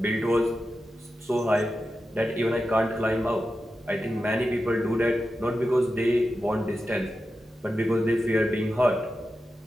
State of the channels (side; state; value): both; normal; correlation 0.91